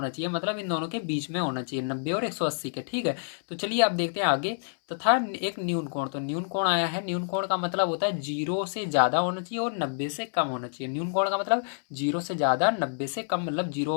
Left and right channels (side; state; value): right; silent; 59 dB below the other